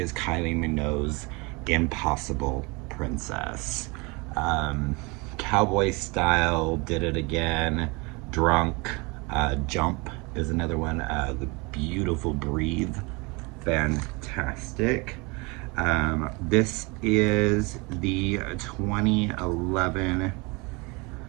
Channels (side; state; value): left; quieter; 27.6 dB